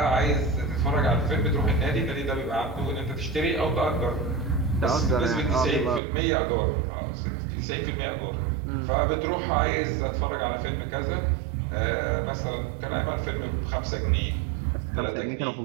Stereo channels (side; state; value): left; drops out; at 6.0 s